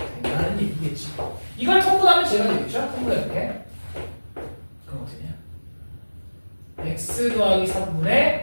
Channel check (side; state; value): both; inverted; correlation -1.00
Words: 된다는 얘기겠지. 이걸 통분하면 제가 되겠죠? 통분해볼게. 그럼 어떻게 되냐? x 더하기